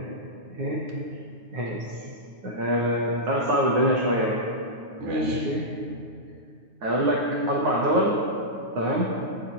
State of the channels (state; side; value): late; left; 9.4 ms